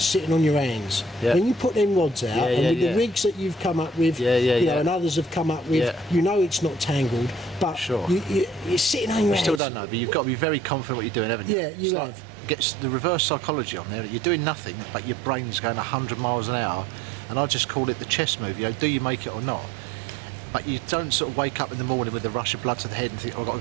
sitting on your hands. Yeah. When you put them rods out, Yeah, and yeah, with yeah. the rigs that you've come up with, Yeah, yeah, you know, yeah. and others have come up with, Yeah. you know it's not tangled, but Sure. you're sitting on your You hands. still don't know, but you've got to be very confident what you're doing, haven't you? Yeah, you It's have. Like, gets the reverse psychology on there. You're doing nothing, but your brain's going 100 miles an hour, and I just call it the chess move. You know, do you make it or not? But you don't sort of wake up in the morning with a rush of blood to the head and think, oh, I've got to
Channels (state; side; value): drops out; left; at 9.6 s